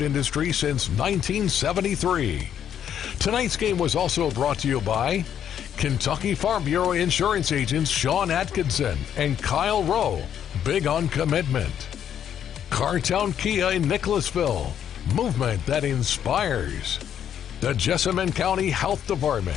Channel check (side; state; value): right; quieter; 9.4 dB